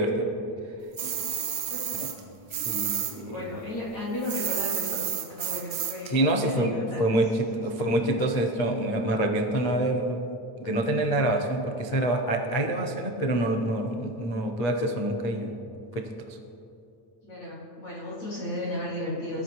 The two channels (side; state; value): right; late; 8.7 ms